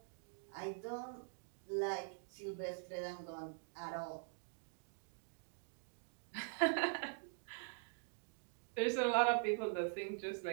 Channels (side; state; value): left; silent; digital silence